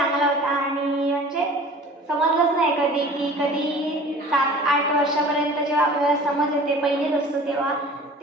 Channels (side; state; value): both; normal; correlation 0.44